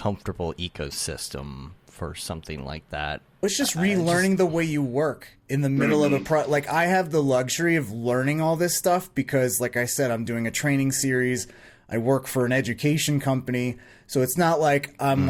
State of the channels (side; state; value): both; identical; correlation 1.00